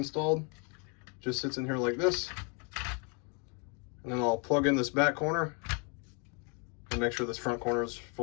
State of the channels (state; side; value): quieter; right; 36.1 dB